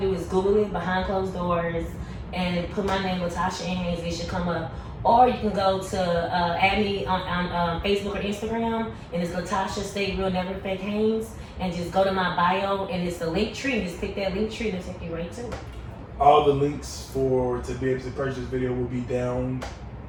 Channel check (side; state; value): both; identical; correlation 1.00